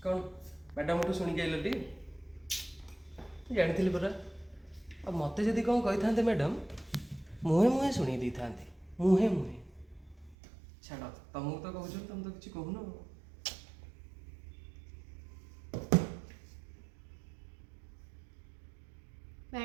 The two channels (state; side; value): drops out; left; at 10.4 s